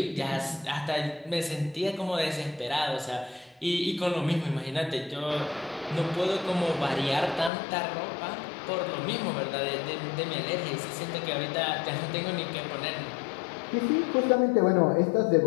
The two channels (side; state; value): right; drops out; at 7.5 s